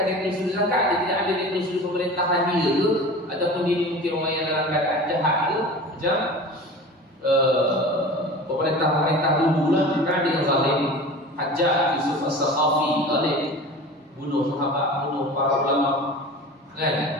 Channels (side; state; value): both; normal; correlation 0.36